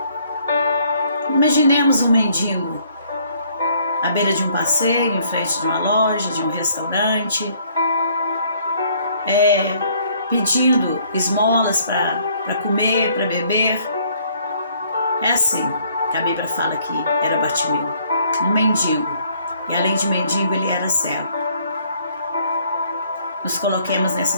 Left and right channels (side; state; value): both; inverted; correlation -0.63